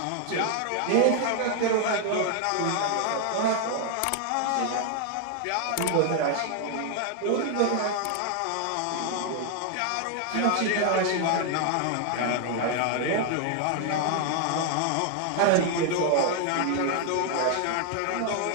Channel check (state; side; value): different; both; correlation 0.00